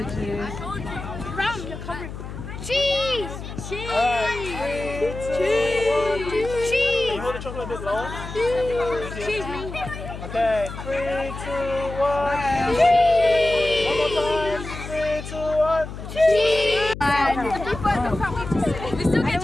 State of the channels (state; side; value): noise; left; hum, 10 dB below the sound